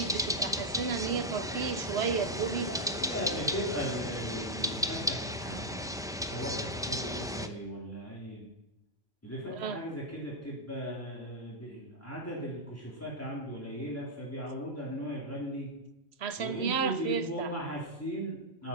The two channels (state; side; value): normal; both; correlation -0.03